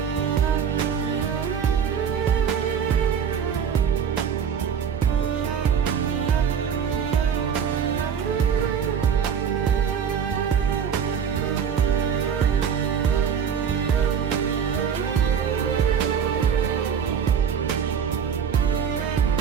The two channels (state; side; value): quieter; left; 7.5 dB